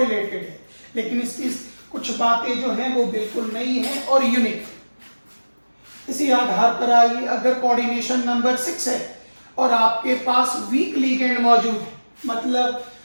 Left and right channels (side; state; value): both; inverted; correlation -1.00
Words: है, लेकिन इसकी कुछ बातें जो हैं वो बिल्कुल नई हैं और यूनिक है। इसी आधार पर आइए, अगर कोऑर्डिनेशन नंबर 6 है और आपके पास वीक लिगेंड मौजूद है, मतलब